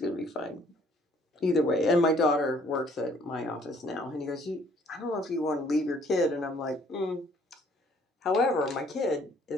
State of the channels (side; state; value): both; normal; correlation 0.61